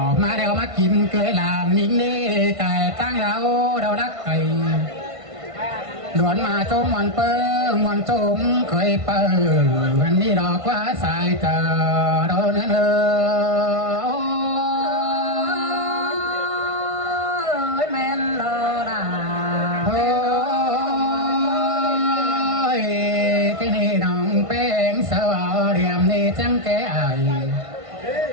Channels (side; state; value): left; late; 1.5 ms